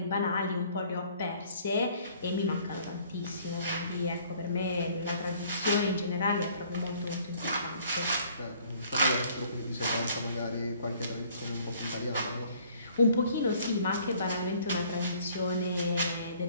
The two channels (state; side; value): inverted; both; correlation -0.58